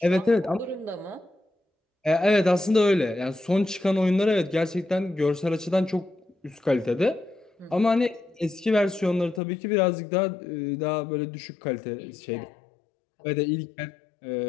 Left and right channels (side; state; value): right; drops out; at 9.4 s